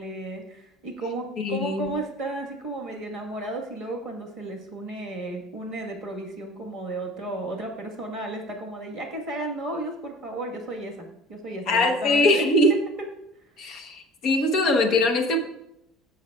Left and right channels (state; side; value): normal; both; correlation 0.43